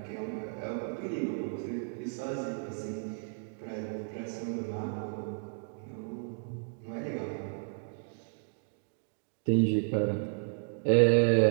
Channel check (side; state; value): left; silent; digital silence